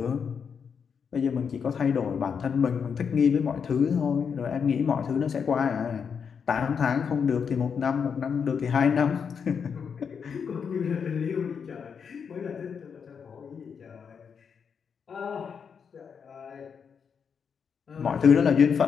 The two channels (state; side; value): quieter; right; 6.6 dB